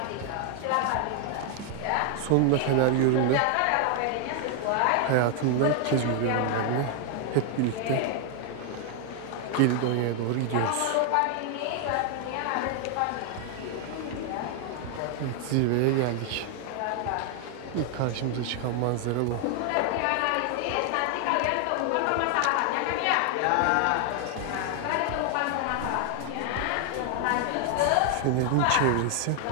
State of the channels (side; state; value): both; different; correlation 0.00